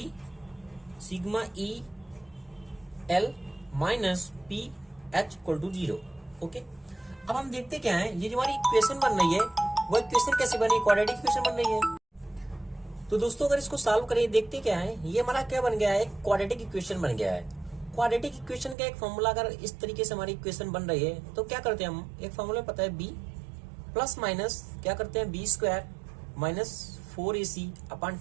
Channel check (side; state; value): left; drops out; at 18.8 s